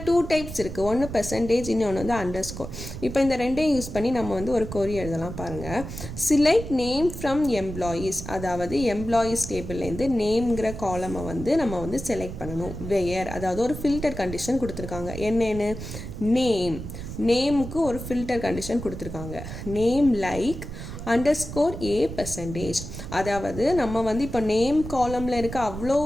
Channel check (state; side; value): noise; right; rumble, 9 dB below the sound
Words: 2 டைப்ஸ் இருக்குது. ஒன்று பெர்சன்டேஜ், இன்னொன்று வந்து அண்டர்ஸ்கோர். இப்போ இந்த ரெண்டையும் யூஸ் பண்ணி நம்ம வந்து ஒரு கொரி எழுதலாம். பாருங்கள், செலக்ட் நேம் ஃப்ரம் எம்ப்ளாயீஸ், அதாவது எம்ப்ளாயீஸ் டேபிள்லேருந்து நேம்ங்கிற காலமை வந்து நம்ம வந்து செலக்ட் பண்ணணும். வேர், அதாவது ஒரு ஃபில்டர் கண்டிஷன் கொடுத்துருக்காங்க. என்னென்னு? நேமுக்கு ஒரு ஃபில்டர் கண்டிஷன் கொடுத்துருக்காங்க. நேம் லைக் அண்டர்ஸ்கோர் ஏ பெர்சன்டேஜ். அதாவது நம்ம வந்து இப்போ நேம் காலமில் இருக்க அவ்வளோ